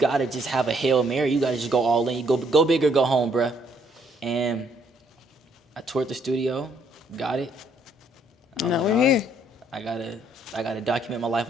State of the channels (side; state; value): both; normal; correlation 0.67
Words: to just have a Hail Mary. You got to just go all in. You go big or go home, bruh. And I toured the studio, got it. Now we're here. I gotta document my life